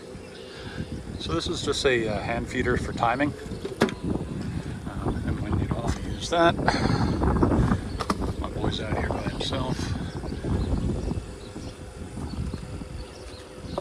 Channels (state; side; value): identical; both; correlation 1.00